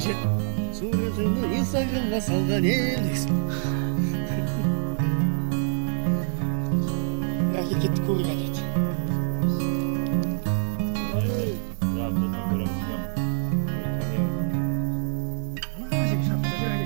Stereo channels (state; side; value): silent; left; digital silence